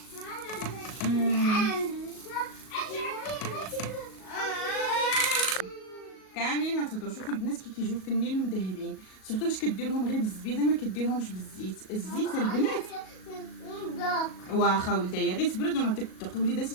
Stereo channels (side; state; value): right; late; 37 ms